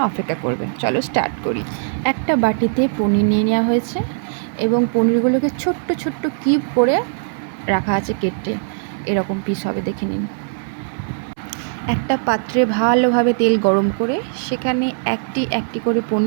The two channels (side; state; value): left; silent; 65 dB below the other